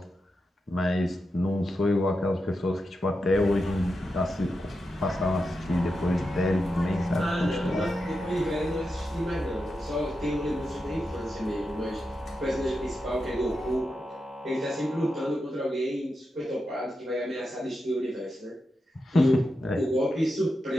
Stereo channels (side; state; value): both; normal; correlation 0.88